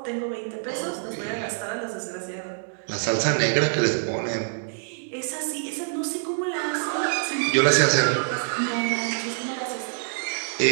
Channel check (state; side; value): silent; left; digital silence